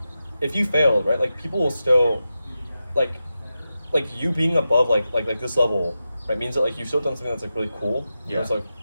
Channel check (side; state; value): both; inverted; correlation -0.91